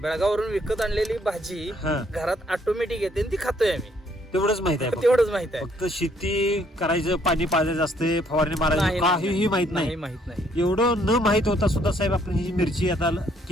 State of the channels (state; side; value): normal; both; correlation 0.67